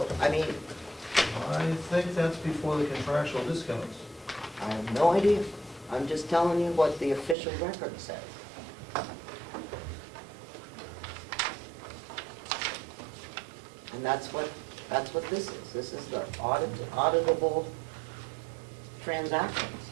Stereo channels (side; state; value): left; drops out; at 7.4 s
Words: I mean, I think that's before the contractual discounts. I have no idea. I'm just telling you what the official record says. And that's what this is. This is the auditable transactions